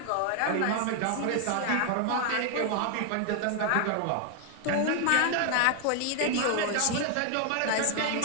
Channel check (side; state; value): both; different; correlation 0.00